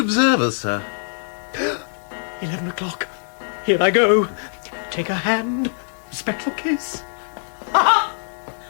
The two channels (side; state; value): right; silent; digital silence